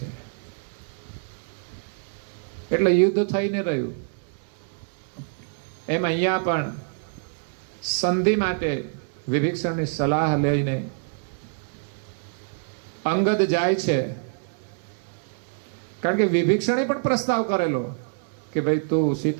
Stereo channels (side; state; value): left; silent; 61 dB below the other